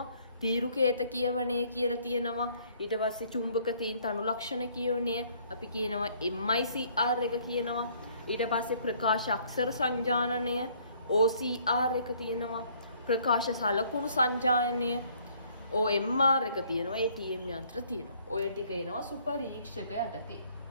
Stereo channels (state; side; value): inverted; both; correlation -0.62